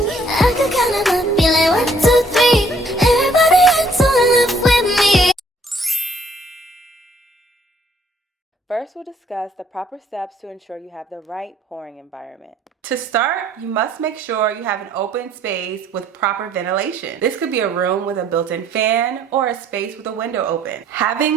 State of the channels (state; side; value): normal; both; correlation 0.63